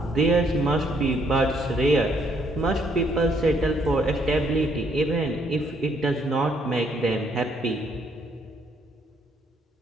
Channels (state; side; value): normal; both; correlation 0.69